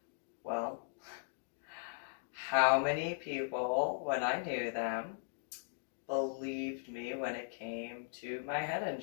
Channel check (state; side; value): silent; right; digital silence